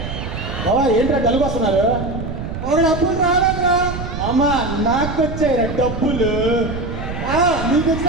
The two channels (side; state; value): right; noise; rumble, 6 dB below the sound